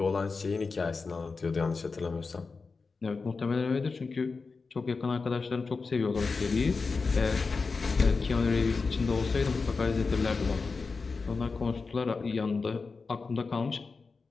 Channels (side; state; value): right; quieter; 4.4 dB